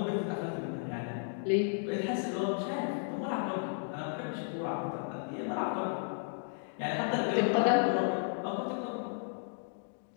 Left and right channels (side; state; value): right; silent; digital silence